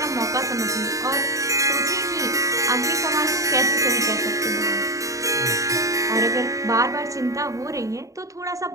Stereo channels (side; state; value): left; late; 0.16 ms